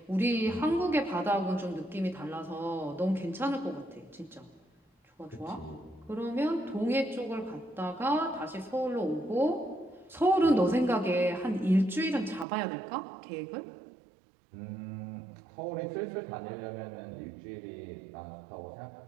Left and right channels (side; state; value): left; drops out; at 12.5 s